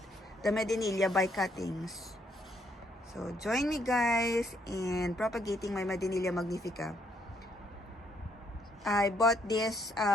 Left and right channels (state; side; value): normal; both; correlation 0.71